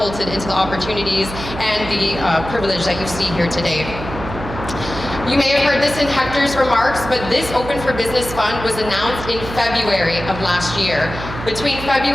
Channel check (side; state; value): right; noise; hum, 10 dB below the sound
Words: into the opportunities and the privilege that you see here today. You may have heard this in Hector's remarks, but this Open for Business Fund was announced in February of last year. Between